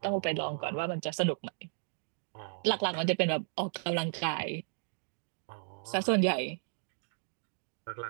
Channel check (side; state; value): left; silent; digital silence